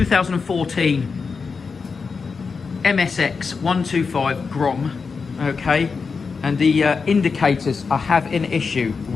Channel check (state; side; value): quieter; right; 5.0 dB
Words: MSX125 Grom, okay, and the indicators I have an issue